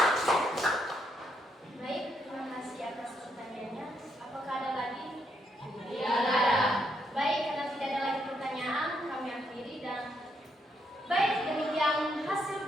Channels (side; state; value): both; normal; correlation 0.76